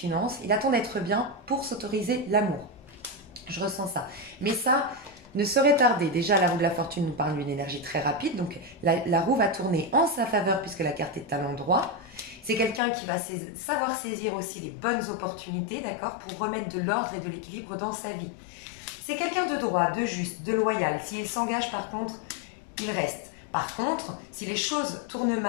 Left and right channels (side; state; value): right; drops out; at 12.8 s